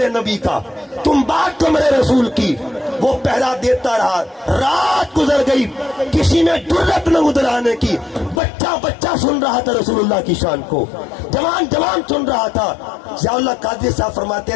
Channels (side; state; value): right; drops out; at 8.4 s